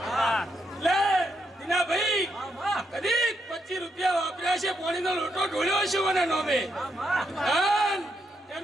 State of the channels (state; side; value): normal; both; correlation 0.80